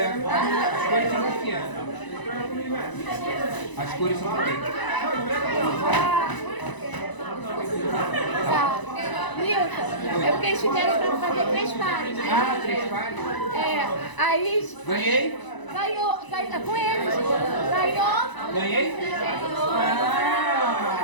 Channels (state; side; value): late; right; 1.0 ms